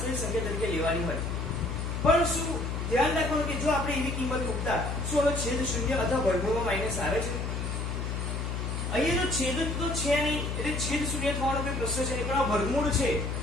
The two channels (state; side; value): noise; left; hum, 3 dB below the sound